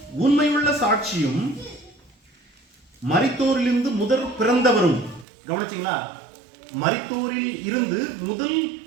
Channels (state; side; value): drops out; left; at 5.2 s